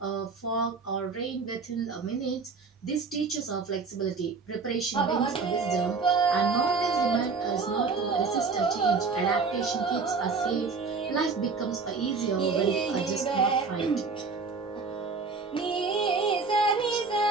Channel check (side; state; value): left; quieter; 4.6 dB